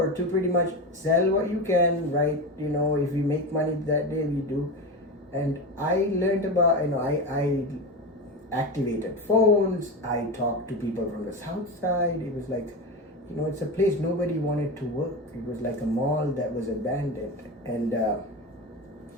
to pretty much sell what you can, right? If you make money that day, we do. And I learned about, I activated phones. I talked to people from the south side. It was like, it's a place nobody wanted to work. It was like a mall that was abandoned. And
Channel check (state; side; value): normal; both; correlation 0.21